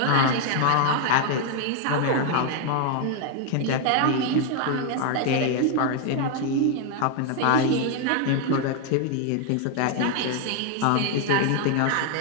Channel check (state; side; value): different; both; correlation 0.00